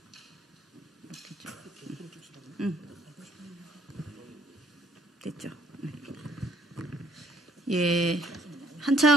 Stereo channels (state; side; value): normal; both; correlation 0.63